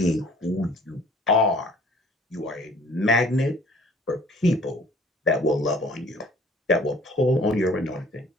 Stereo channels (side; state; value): both; normal; correlation 0.53